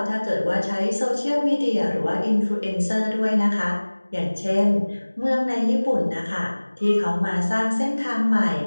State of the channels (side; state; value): both; inverted; correlation -1.00